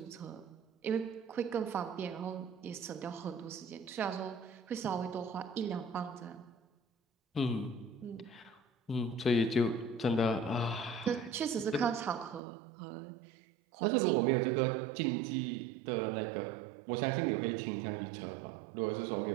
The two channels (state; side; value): drops out; left; at 12.4 s